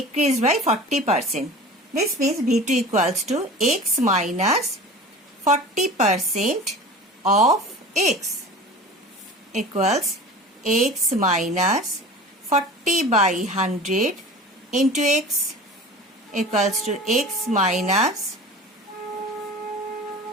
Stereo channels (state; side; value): normal; both; correlation 0.37